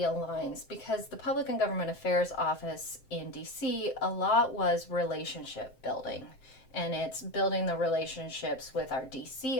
because the Public and Government Affairs office in DC, a lot was relationship building. And it's building the relationships with our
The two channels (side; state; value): right; late; 7.7 ms